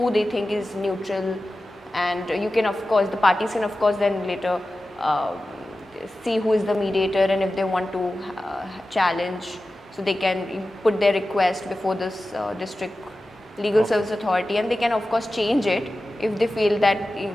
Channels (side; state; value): both; normal; correlation 0.94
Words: they think is neutral, and you can, of course, the parties can, of course, then later see who is the mediator, and if they want to challenge, so they can put their request before this district legal service authority, and they can of course change it if they feel that